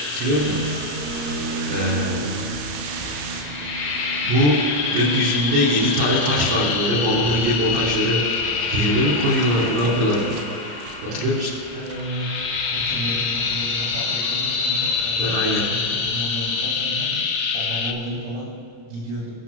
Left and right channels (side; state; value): left; late; 34 ms